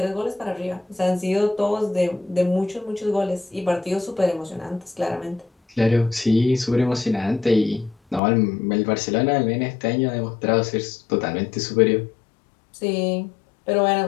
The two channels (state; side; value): drops out; right; at 8.2 s